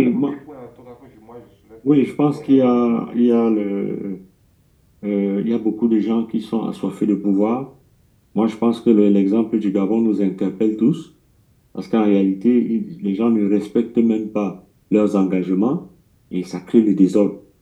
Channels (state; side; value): identical; both; correlation 1.00